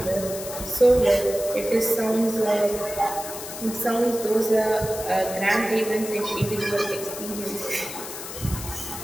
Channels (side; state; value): left; noise; hiss, 10 dB below the sound